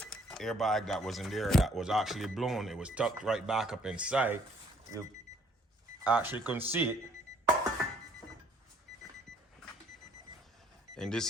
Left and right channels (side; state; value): both; normal; correlation 0.62